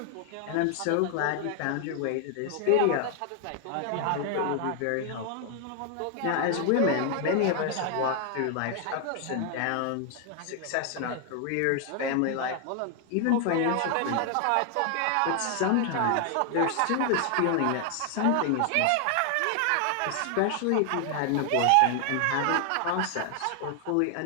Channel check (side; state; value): both; different; correlation 0.00